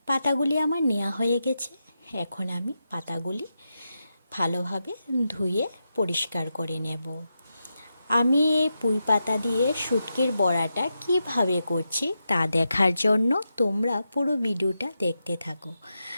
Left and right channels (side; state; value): both; inverted; correlation -0.88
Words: পাতাগুলি আমার নেওয়া হয়ে গেছে। এখন আমি পাতাগুলি ভালোভাবে ধুয়ে পরিষ্কার করে নেব। আমি এই পুঁই পাতা দিয়ে শুটকির বড়াটা কিভাবে করছি তা দেখার জন্য তোমরা পুরো ভিডিওটা দেখতে থাকো।